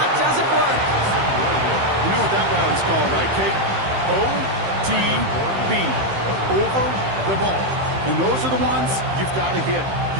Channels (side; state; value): left; late; 15 ms